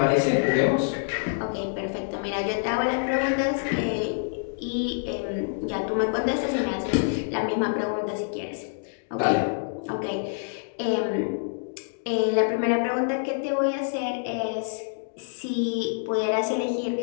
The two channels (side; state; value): right; silent; digital silence